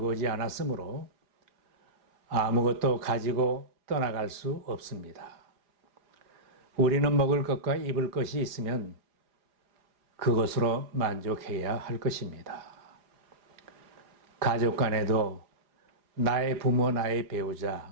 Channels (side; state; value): left; late; 4.9 ms